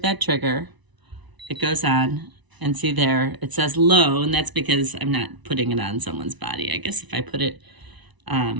that trigger, it goes on, and see there, it says low, and that's because I'm not putting it on someone's body. I guess if I put it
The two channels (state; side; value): late; left; 1.0 ms